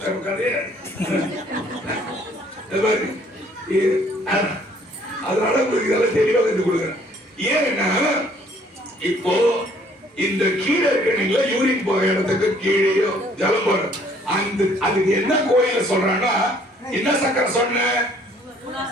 அதனால உங்களுக்கு இதெல்லாம் தெளிவா கத்து கொடுக்குறேன். ஏன்னா இப்போ இந்த கீழே இருக்கீங்களா, யூரின் போற இடத்துக்கு கீழேயோ ஜலம் போற அதுக்கு என்ன கோயில சொல்றான்னா, என்ன சக்கரை சொன்ன?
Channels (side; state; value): both; normal; correlation 0.60